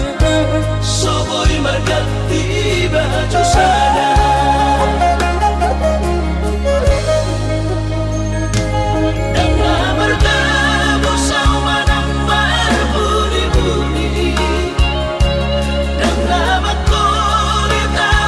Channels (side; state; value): both; identical; correlation 1.00